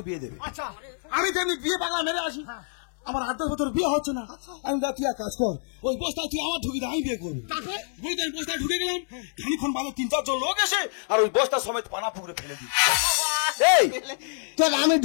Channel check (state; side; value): silent; right; digital silence